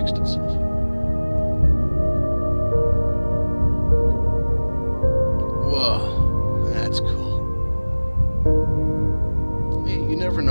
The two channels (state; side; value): inverted; both; correlation -1.00